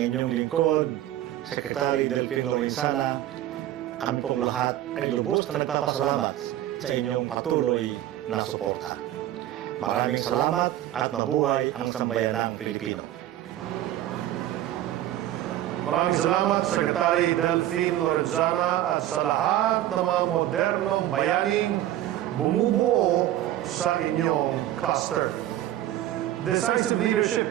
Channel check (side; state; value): left; quieter; 13.4 dB